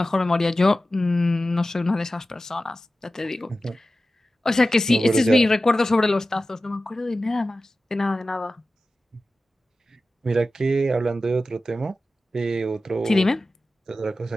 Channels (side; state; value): both; normal; correlation 0.94